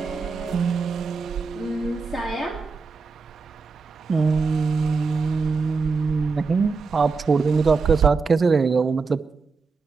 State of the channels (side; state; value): left; quieter; 4.6 dB